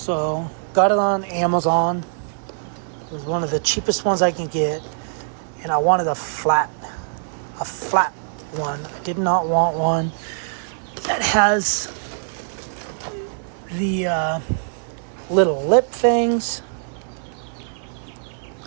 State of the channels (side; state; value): left; silent; digital silence